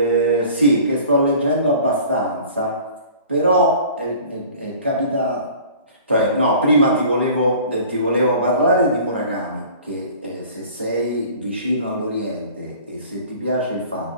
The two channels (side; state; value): both; inverted; correlation -0.46